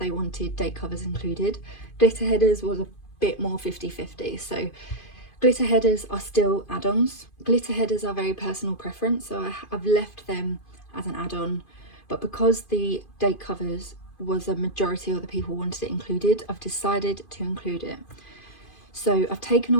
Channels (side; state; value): right; late; 2.5 ms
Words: wanted date covers included. Glitter headers was a bit more 50-50. So glitter headers are still add-ons. Glitter headers are very personal preference, so I've left them as an add-on but because the date covers was a majority of the people wanted it included, I've decided to include it. So I've taken